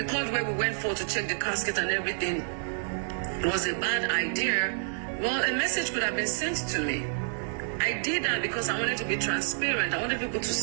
where we went for to check the casket and everything was a bad idea, well, a message could have been sent to me. I did that because I wanted to be transparent. I wanted people to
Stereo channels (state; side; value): silent; left; digital silence